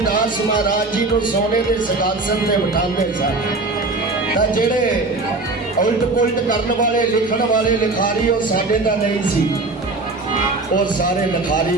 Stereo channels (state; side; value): quieter; left; 3.3 dB